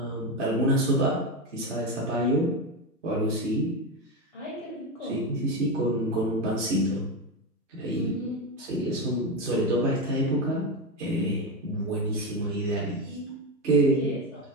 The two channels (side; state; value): both; normal; correlation 0.14